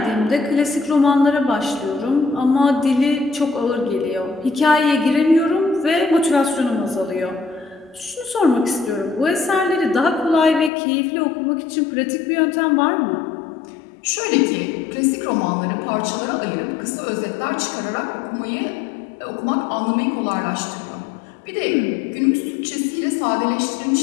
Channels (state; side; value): drops out; right; at 10.7 s